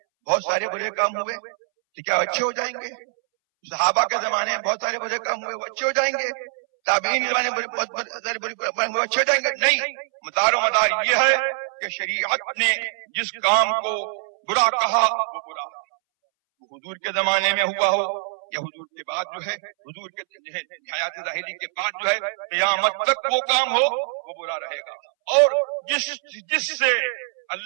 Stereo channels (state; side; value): silent; left; 63 dB below the other